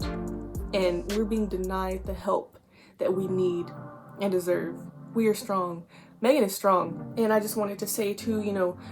and we're being denied the help that we need and deserve. We are strong. Meghan is strong. And I just wanted to say too,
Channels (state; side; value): identical; both; correlation 1.00